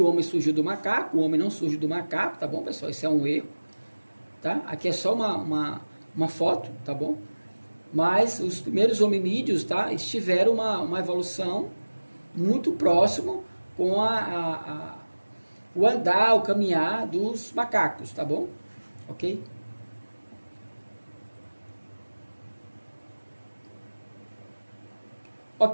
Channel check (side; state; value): both; inverted; correlation -1.00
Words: o homem surgiu do macaco, o homem não surgiu do macaco, tá bom, pessoal? Isso é um erro, tá? Aqui é só uma foto, tá bom? Mas os primeiros hominídeos, tá? Tiveram uma evolução muito próximo com o andar, o caminhar dos macacos, tá bom? Ok?